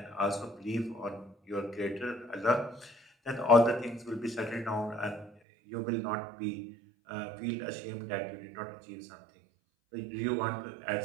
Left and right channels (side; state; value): left; drops out; at 5.3 s